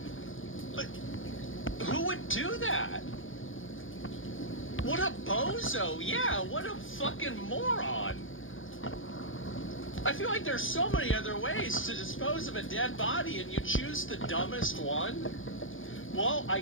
but who would do that? What a bozo. Yeah, what a fucking moron. I feel like there's so many other ways to dispose of a dead body, and you choose the dumbest one? Well, I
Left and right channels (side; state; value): right; late; 0.58 ms